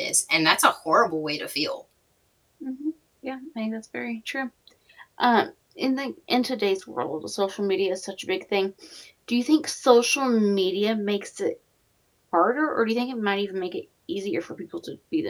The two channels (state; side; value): identical; both; correlation 1.00